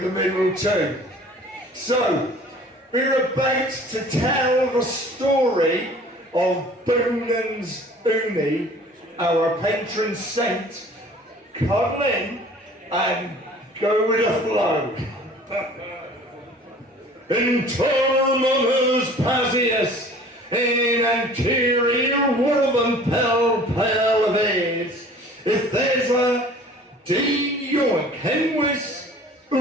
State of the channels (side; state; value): both; normal; correlation 0.48